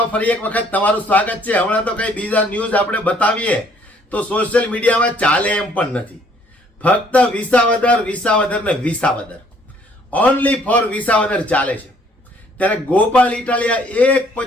ફરી એક વખત તમારું સ્વાગત છે। હમણાં તો કઈ બીજા ન્યૂઝ આપણે બતાવીએ તો સોશિયલ મીડિયામાં ચાલે એમ પણ નથી। ફક્ત વિસાવદર ને વિસાવદર, ઓનલી ફોર વિસાવદર ચાલે છે। ત્યારે ગોપાલ ઇટાલિયા એક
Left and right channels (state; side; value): normal; both; correlation 0.62